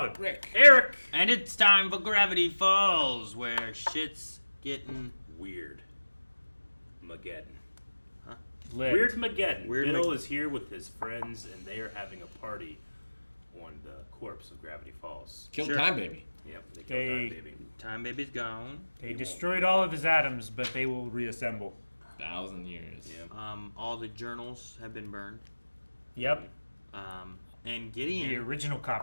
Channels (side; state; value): both; inverted; correlation -1.00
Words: Rick. Eric. And it's time for Gravity Falls, where shit's getting Weird. Mageddon. Huh? Weirdmageddon. Bill is here with his friends, and they are having a party on the corpse of Gravity Falls. Killed Sure. Time Baby. Yep, they killed Time Baby. Time Baby's gone. They destroyed all of his atoms, but they will reassemble. 1,000 years. Yeah. All the journals have been burned. Yep. And Gideon The original